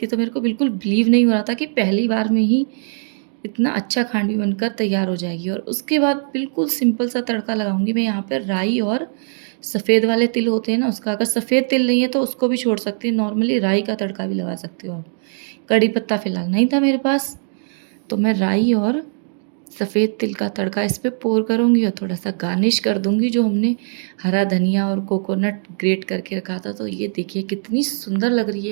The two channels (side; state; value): left; silent; digital silence